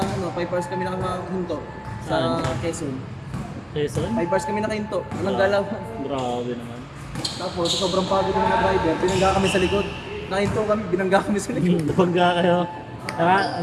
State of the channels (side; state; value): both; identical; correlation 1.00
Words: 5 hours kami nakahinto sa Saan? Quezon. Quezon? 5 hours kami nakahinto. Walang galaw. Grabe naman. Tapos, sobrang pagod ng mga driver. Binangga kami sa likod. Nakahinto kami, binangga kami sa likod. Nabangga kayo.